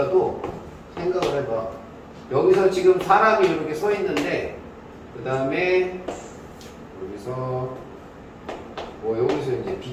생각을 해봐. 여기서 지금 사람이 이렇게 서 있는데 그 다음에 여기서 뭐 여기서 이제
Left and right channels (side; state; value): both; identical; correlation 1.00